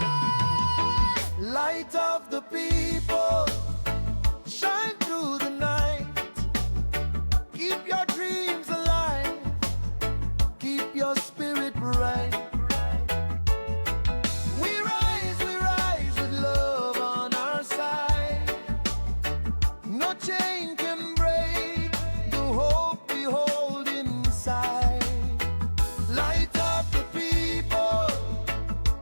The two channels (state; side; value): inverted; both; correlation -1.00